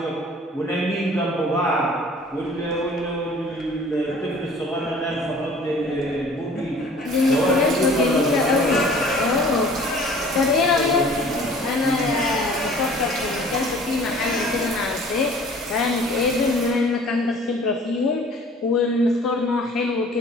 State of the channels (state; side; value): normal; both; correlation 0.50